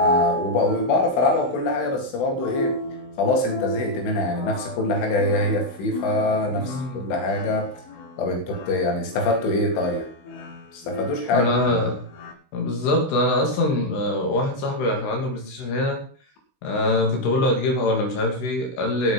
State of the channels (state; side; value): late; right; 16 ms